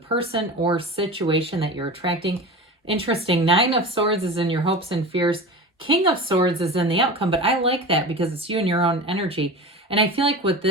or situation that you're attracting. Interesting. 9 of Swords is in your hopes and fears. King of Swords is in the outcome, but I like that because it's you and your own energy. And I feel like with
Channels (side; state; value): both; normal; correlation 0.30